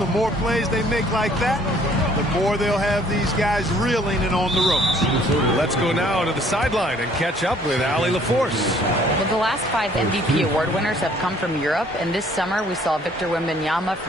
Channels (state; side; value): normal; both; correlation 0.59